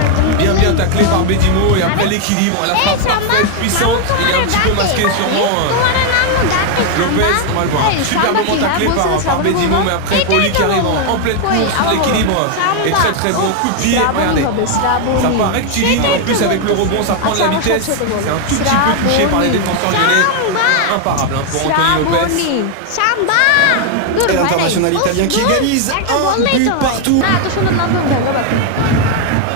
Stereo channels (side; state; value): both; different; correlation 0.00